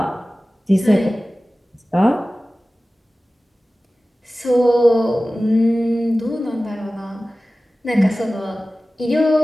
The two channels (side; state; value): both; normal; correlation 0.96